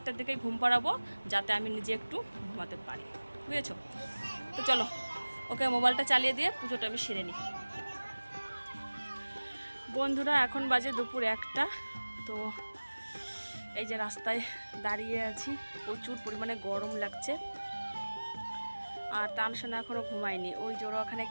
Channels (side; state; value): both; inverted; correlation -1.00